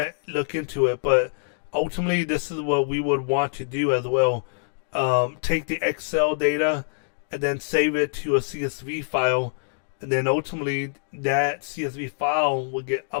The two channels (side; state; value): right; silent; digital silence